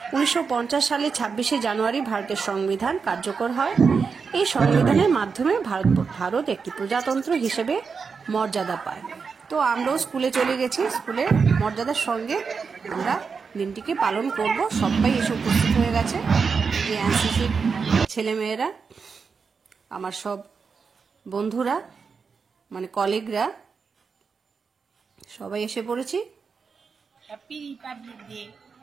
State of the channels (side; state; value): left; quieter; 5.4 dB